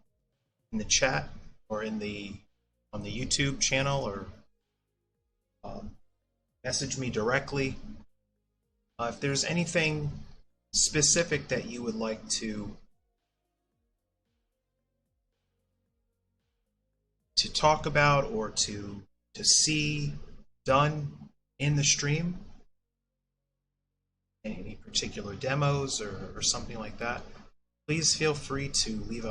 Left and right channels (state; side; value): identical; both; correlation 1.00